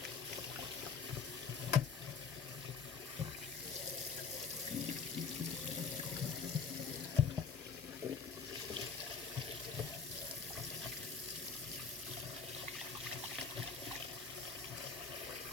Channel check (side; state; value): right; quieter; 5.6 dB